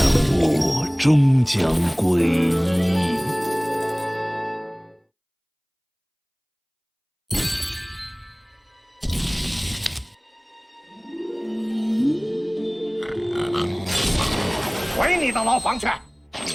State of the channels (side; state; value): both; identical; correlation 1.00